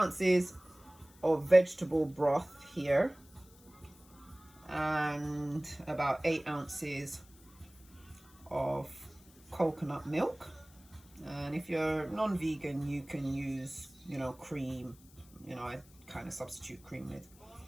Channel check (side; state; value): left; noise; hiss, 25 dB below the sound